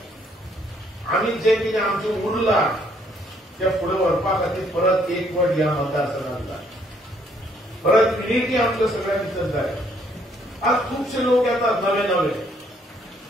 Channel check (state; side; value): normal; both; correlation 0.67